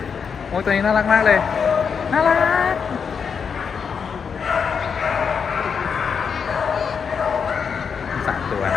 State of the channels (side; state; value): right; quieter; 6.4 dB